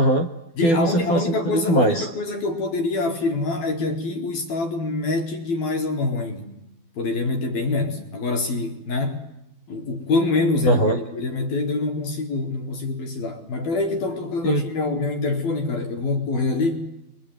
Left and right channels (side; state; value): right; late; 12 ms